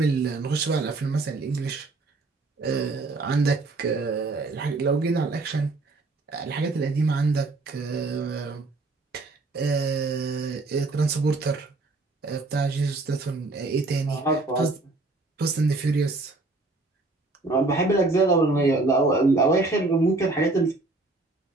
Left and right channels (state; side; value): quieter; left; 3.3 dB